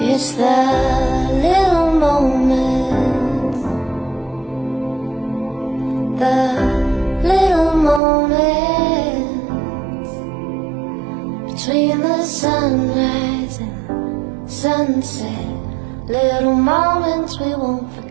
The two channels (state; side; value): drops out; left; at 8.0 s